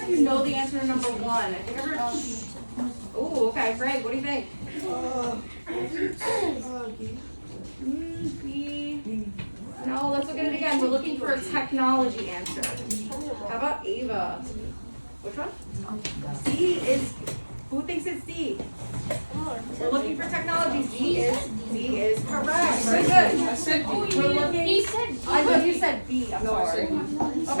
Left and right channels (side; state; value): both; inverted; correlation -1.00